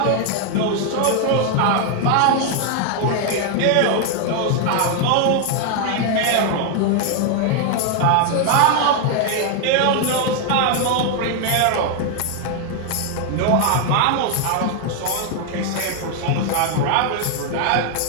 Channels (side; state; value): both; different; correlation 0.00